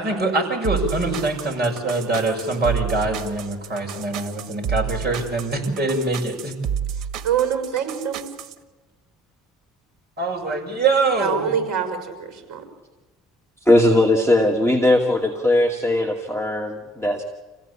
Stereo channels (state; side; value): normal; both; correlation 0.56